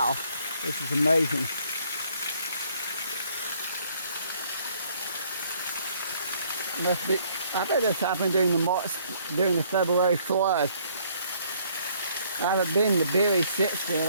this is amazing. Must be, I bet this happened during the February flood. I haven't been to Beary since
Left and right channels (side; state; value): both; inverted; correlation -0.63